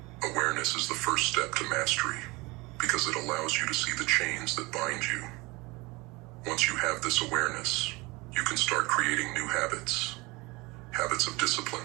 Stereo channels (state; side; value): quieter; left; 24.0 dB